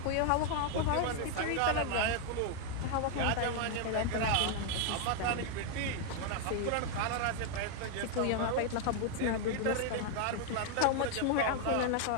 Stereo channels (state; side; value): different; both; correlation 0.00